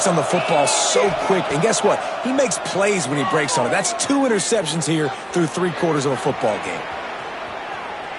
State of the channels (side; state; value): both; identical; correlation 1.00